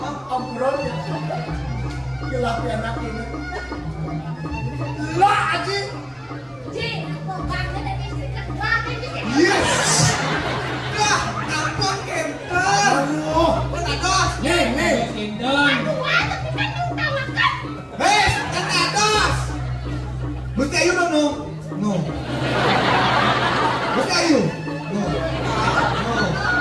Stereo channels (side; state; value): both; identical; correlation 1.00